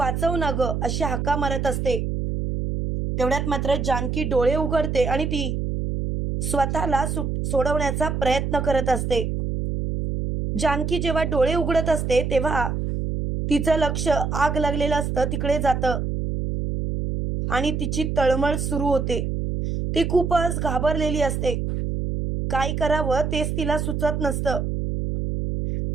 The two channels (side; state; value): right; noise; hum, 2 dB below the sound